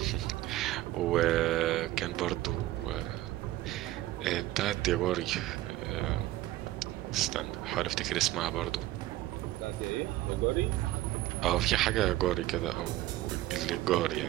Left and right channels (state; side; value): quieter; left; 15.7 dB